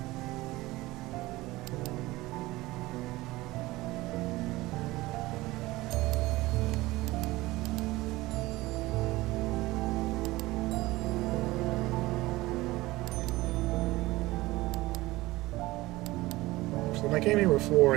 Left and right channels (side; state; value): left; quieter; 19.2 dB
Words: So when I came here before,